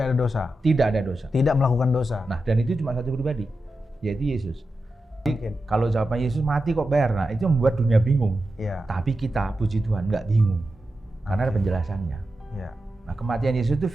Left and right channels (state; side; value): normal; both; correlation 0.91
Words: ada dosa. Tidak ada dosa. Tidak melakukan dosa. Nah, dan itu cuma satu pribadi, yaitu Yesus. Mungkin. Kalau jawaban Yesus mati kok bayar, nah itu membuat dunia bingung. Iya. Tapi kita, puji Tuhan, nggak bingung. Karena ada penjelasannya. Iya. Nah, kematian Yesus itu